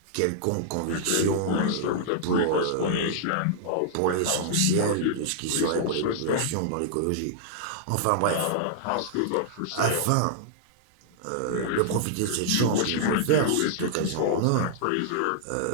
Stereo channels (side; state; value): both; different; correlation -0.01